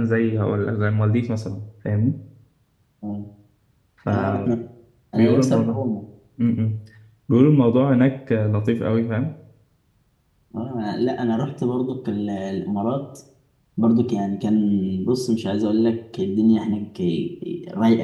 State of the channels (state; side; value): identical; both; correlation 1.00